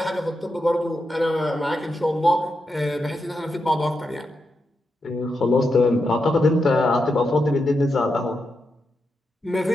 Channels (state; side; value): normal; both; correlation 0.86